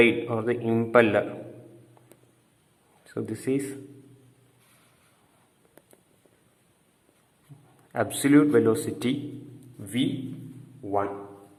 or the impeller. So this is absolute velocity v1.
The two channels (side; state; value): both; identical; correlation 1.00